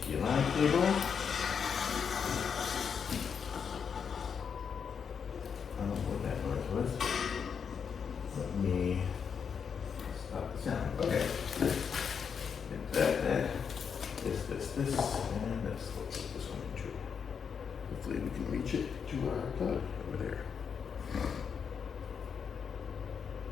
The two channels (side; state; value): right; quieter; 6.7 dB